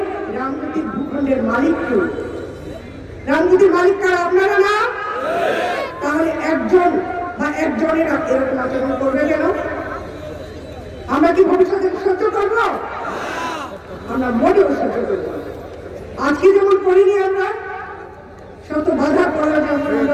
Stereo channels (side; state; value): both; identical; correlation 1.00